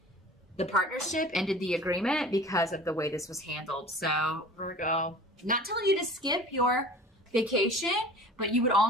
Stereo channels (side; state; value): both; normal; correlation 0.42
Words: the partnership, ended the agreement because of the way this was handled. So Virgo, not telling you to skip your vacation, but you would